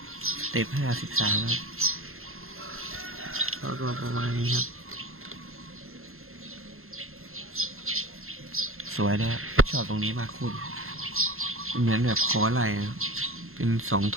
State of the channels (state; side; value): late; left; 0.61 ms